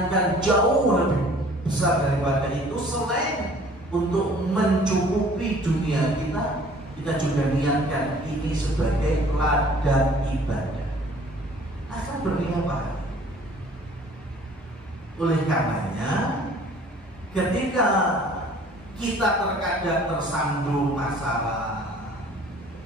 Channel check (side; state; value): both; normal; correlation 0.53